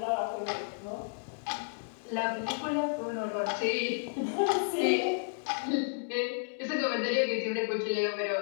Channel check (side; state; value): right; silent; digital silence